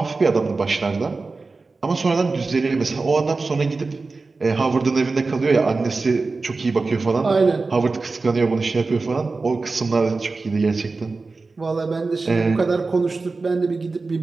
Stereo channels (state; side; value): quieter; left; 3.9 dB